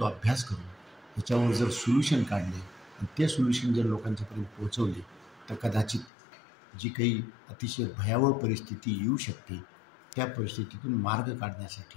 अभ्यास करून, ह्याच्यावर जर सोल्युशन काढले आणि ते सोल्युशन जर लोकांच्यापर्यंत पोहोचवले तर कदाचित जी काही अतिशय भयावह परिस्थिती येऊ शकते त्या परिस्थितीतून मार्ग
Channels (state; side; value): drops out; right; at 6.1 s